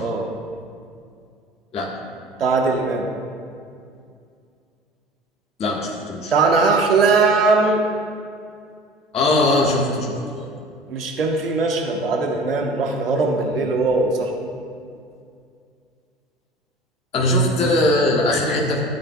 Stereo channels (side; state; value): both; normal; correlation 0.42